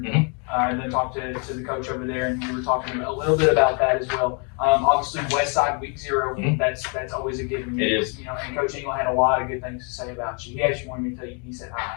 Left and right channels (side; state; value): right; quieter; 37.6 dB